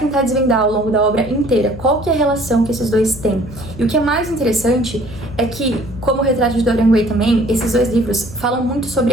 desvendar ao longo da obra inteira. Qual que é a relação que esses dois têm? E o que é mais interessante é que, como o Retrato de Dorian Gray também, esses dois livros falam muito sobre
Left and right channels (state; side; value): noise; left; hum, 14 dB below the sound